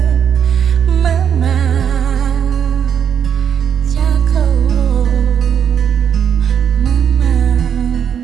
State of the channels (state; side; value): quieter; left; 8.2 dB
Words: mama, tiako, mama,